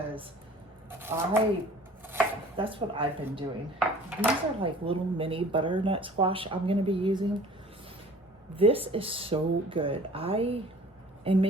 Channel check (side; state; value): both; normal; correlation 0.48